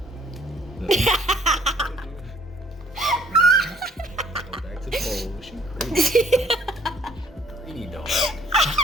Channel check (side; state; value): both; normal; correlation 0.60